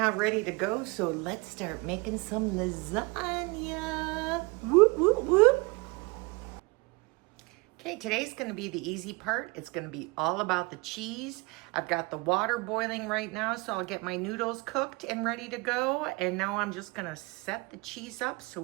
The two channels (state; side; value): quieter; left; 27.2 dB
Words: ready to go. So let's start making some lasagna. Whoop, whoop, whoop. Okay, today's going to be the easy part. It's going to be all about the cheese. I've got the water boiling right now, so I'll get my noodles cooked and ready to go. And now I'm just going to set the cheese up so